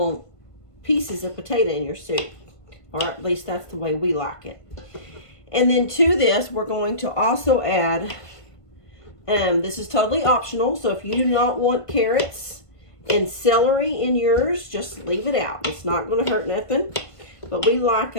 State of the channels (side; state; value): right; late; 1.5 ms